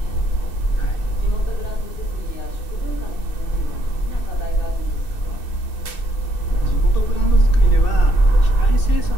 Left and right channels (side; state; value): right; late; 2.6 ms